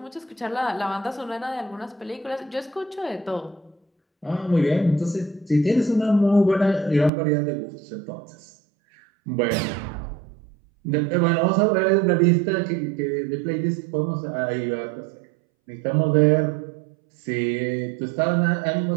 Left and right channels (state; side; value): drops out; left; at 7.1 s